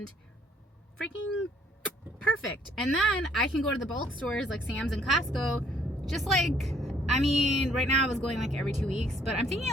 Freaking perfect. And then I can go to the bulk stores like Sam's and Costco, just like, I mean, right now I was going like every 2 weeks, but I'm thinking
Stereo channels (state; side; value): normal; both; correlation 0.65